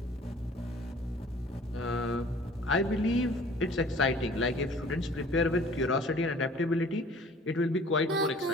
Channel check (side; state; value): both; normal; correlation 0.50